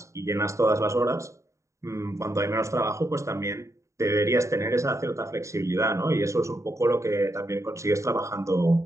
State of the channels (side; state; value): left; late; 0.14 ms